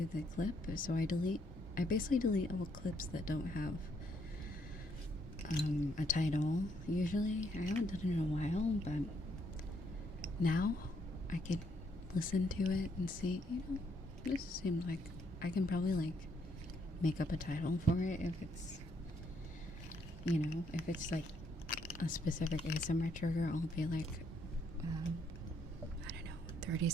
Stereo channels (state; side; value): normal; both; correlation 0.72